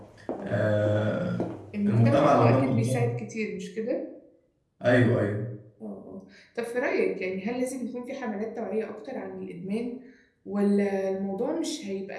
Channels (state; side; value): identical; both; correlation 1.00